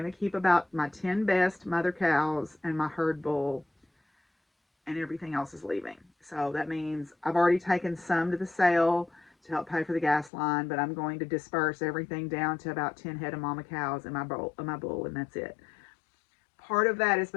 to keep about my 10 best mother cows and my herd bull, and everything else is leaving. So that means I've already taken some to the sale to help pay for the gas line, but I'm going to disperse everything down to about 10 head of mama cows and my bull, and that's it. Part of that is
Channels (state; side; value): drops out; right; at 10.3 s